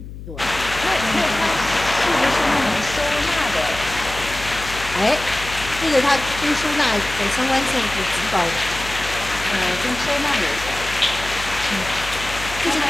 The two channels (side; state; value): left; noise; hum, 12 dB below the sound